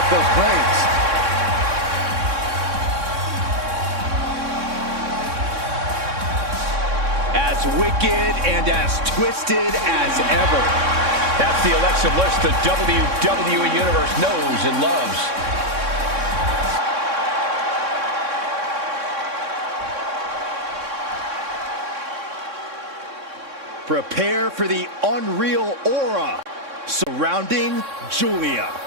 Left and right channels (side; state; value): left; late; 3.6 ms